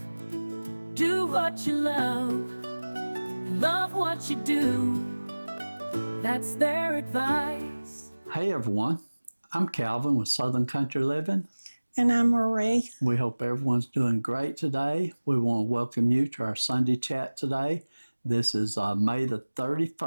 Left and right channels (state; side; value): inverted; both; correlation -1.00